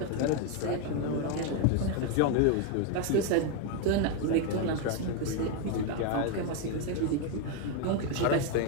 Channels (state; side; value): different; both; correlation 0.01